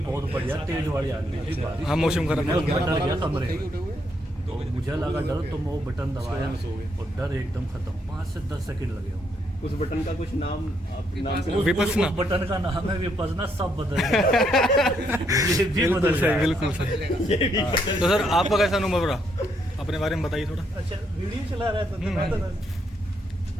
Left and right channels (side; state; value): both; normal; correlation 0.74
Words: बहुत बढ़िया तेज वाली आंधी थी बारिश। हाँ, मौसम खराब है। डर गया कमरे, तो मुझे लगा डर, तो मैं वो बटन दबाया और डर एकदम खत्म। 5 से 10 सेकंड लगे होंगे। उस बटन का कुछ नाम विपसना। उस बटन का नाम है विपसना। सब बदल गया। ये भी बदल गया। बिल्कुल सही। तो सर आपका कैसा अनुभव रहा, अपने बारे में बताइए थोड़ा। अच्छा, वीडियो चला रहा था